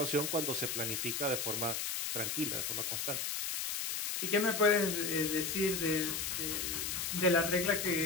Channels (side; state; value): left; noise; hiss, 2 dB below the sound